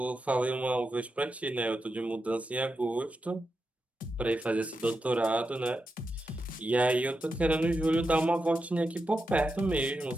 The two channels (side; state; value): both; normal; correlation 0.88